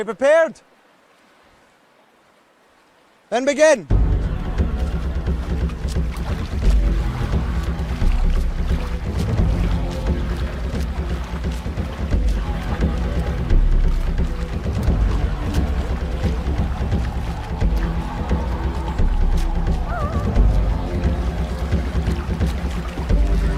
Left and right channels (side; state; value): both; identical; correlation 1.00